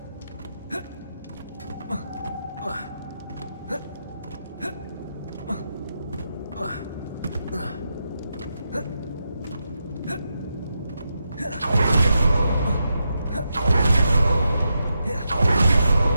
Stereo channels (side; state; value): both; inverted; correlation -0.86